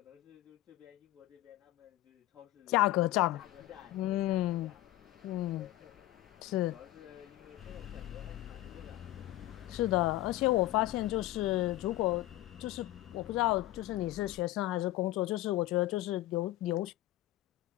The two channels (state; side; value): quieter; right; 16.0 dB